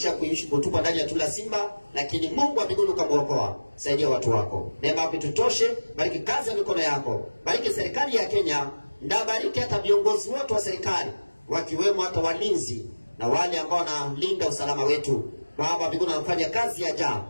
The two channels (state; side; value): inverted; both; correlation -1.00